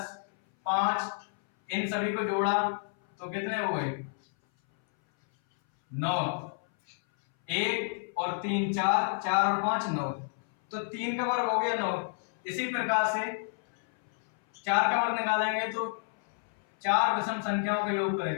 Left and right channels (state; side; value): silent; right; 58 dB below the other